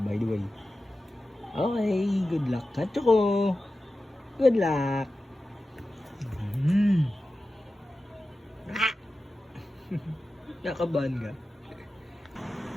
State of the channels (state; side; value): normal; both; correlation 0.94